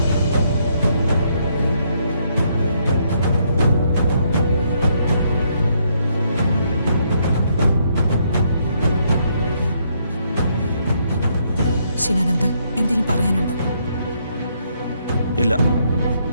ശിവാനന്ദ, എന്തെങ്കിലും പറയാനുണ്ടോ? ഇല്ല.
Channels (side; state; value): both; inverted; correlation -0.73